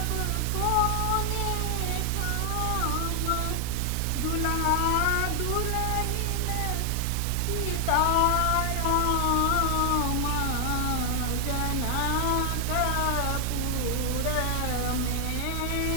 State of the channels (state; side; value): different; both; correlation 0.00